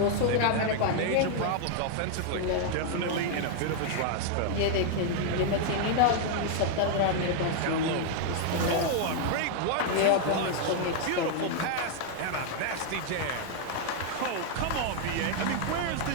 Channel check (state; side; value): different; both; correlation 0.00